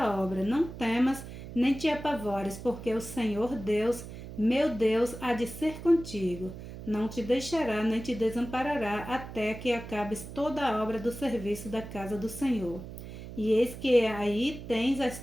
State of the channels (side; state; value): right; noise; hum, 12 dB below the sound